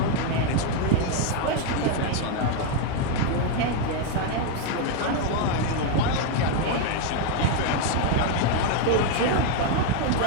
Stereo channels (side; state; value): both; different; correlation 0.01